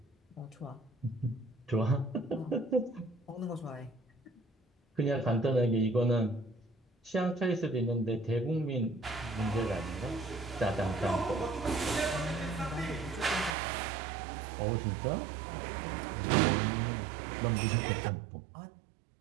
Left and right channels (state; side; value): drops out; left; at 13.6 s